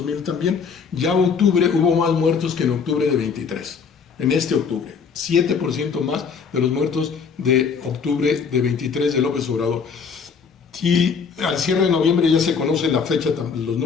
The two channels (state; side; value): quieter; right; 5.9 dB